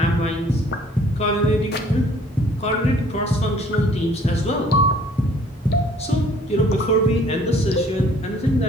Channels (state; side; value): normal; both; correlation 0.57